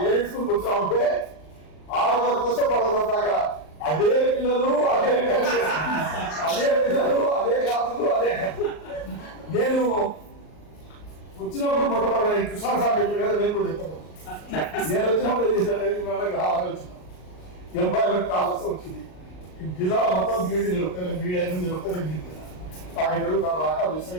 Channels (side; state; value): right; late; 39 ms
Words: ఏ స్కూల్కి వచ్చామంటే 6వ తరగతి వస్తే 10వ తరగతి దాకా అదే పిల్లలు అదే పిల్లలు అదే క్లాసులు అదే. నేను వచ్చినప్పుడు మొట్టమొదటి కృష్ణ సార్ చెప్పారు కదా, నేను కూడా చెప్తాను. నేను వచ్చినప్పుడు ఏం చేశాను, ఆలోచన ఎంప్లాయ్మెంట్ కావాల్సి వచ్చింది. జిల్లా మొత్తం బీడీ బీడీ అయిన ఒక్కరే మిగిలిపోయినా కాకినాడలు కాక